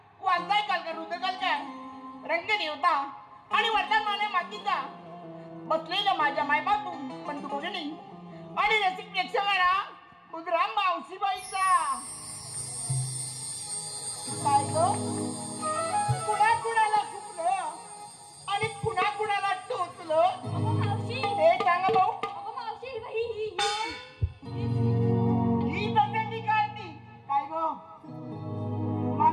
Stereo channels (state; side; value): identical; both; correlation 1.00